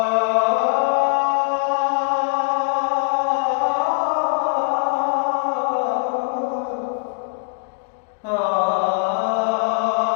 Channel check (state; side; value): silent; right; digital silence